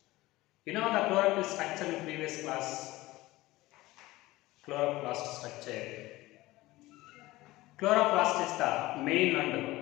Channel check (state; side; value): quieter; right; 18.7 dB